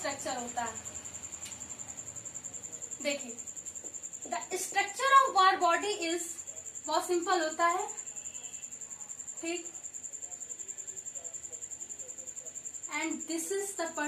होता है। देखिए the structure of Barr body is, बहुत सिंपल होता है। ठीक, and this is the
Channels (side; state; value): both; identical; correlation 1.00